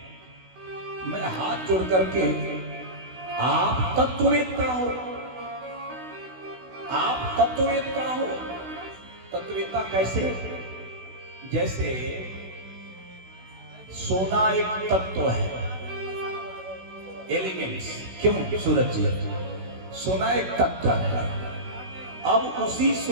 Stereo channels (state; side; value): late; left; 16 ms